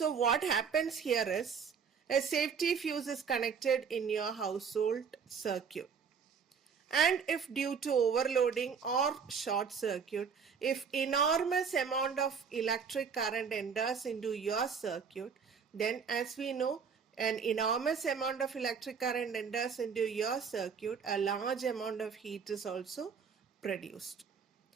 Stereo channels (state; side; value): quieter; left; 6.3 dB